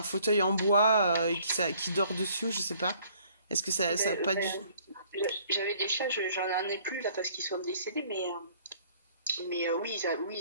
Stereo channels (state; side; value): inverted; both; correlation -0.59